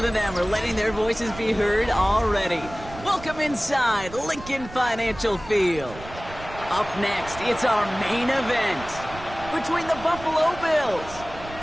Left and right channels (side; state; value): right; noise; rumble, 15 dB below the sound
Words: of them are letting their voices be heard already. Welcome inside Lincoln Financial Field. Up next, it's our main event between the Buffalo Bills